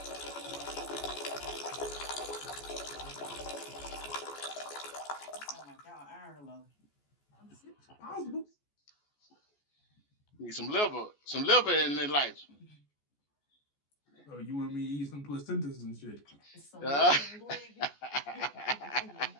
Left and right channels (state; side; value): late; right; 14 ms